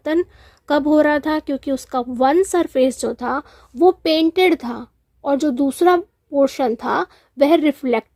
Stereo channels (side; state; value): both; identical; correlation 1.00